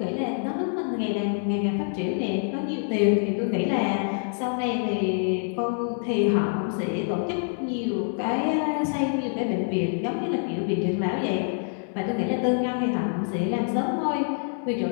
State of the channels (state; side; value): silent; right; 61 dB below the other